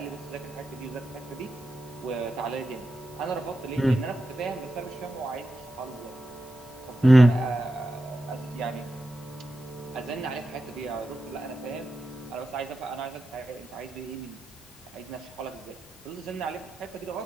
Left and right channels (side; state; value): both; normal; correlation 0.89